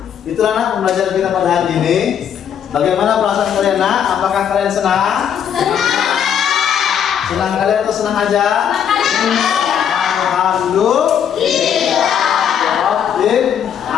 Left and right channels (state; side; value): quieter; right; 8.6 dB